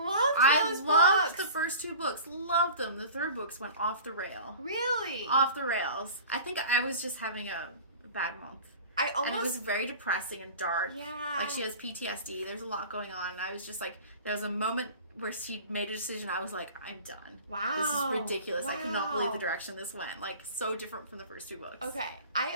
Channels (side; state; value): both; inverted; correlation -0.39